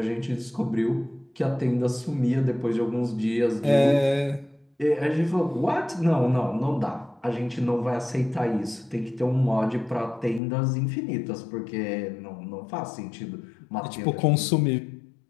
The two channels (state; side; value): drops out; right; at 10.4 s